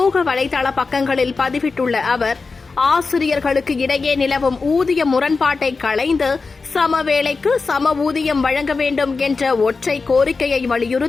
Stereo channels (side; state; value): right; quieter; 4.3 dB